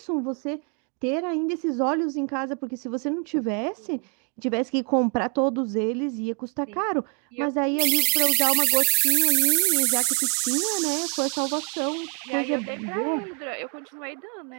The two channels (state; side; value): quieter; left; 38.4 dB